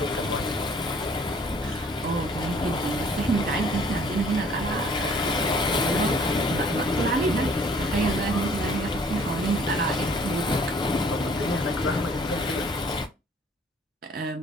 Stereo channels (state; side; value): normal; both; correlation 0.57